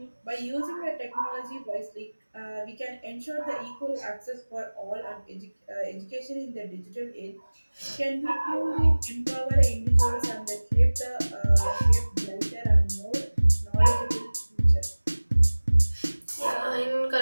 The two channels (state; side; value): inverted; both; correlation -1.00